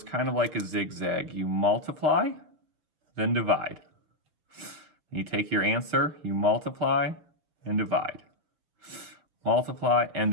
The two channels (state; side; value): late; left; 6.2 ms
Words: kind of like a zigzag. You multiply, then divide. You take your answer, you multiply and divide. Multiply and